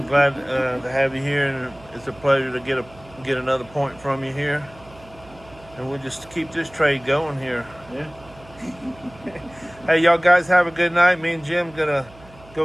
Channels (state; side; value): noise; right; hum, 23 dB below the sound